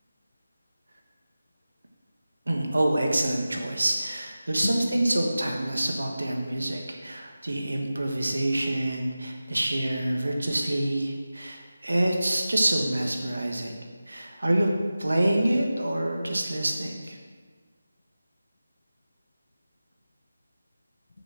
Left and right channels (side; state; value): both; inverted; correlation -0.95